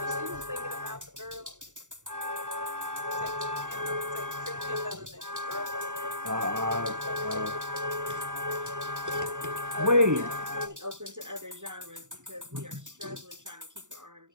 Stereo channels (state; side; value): late; left; 0.86 ms